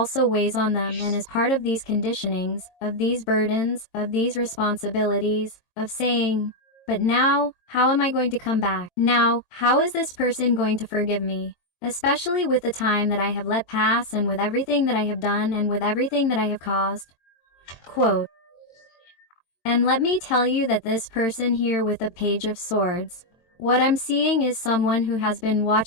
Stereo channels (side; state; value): right; late; 22 ms